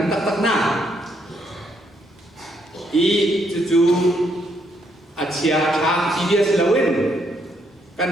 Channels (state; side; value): normal; both; correlation 0.73